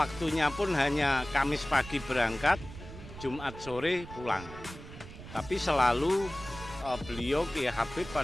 pun hanya Kamis pagi berangkat, Jumat sore pulang. Tapi selalu beliau Kiai Habib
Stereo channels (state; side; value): noise; right; rumble, 14 dB below the sound